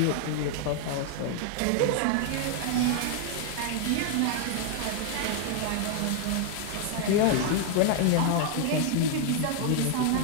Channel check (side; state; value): both; different; correlation 0.00